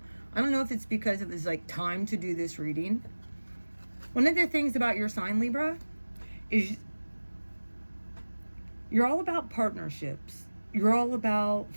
I don't know if it's because it was like time to do this reading. One of the things about your sign, Libra, is you're all about partnerships. You're all about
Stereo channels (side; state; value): both; inverted; correlation -1.00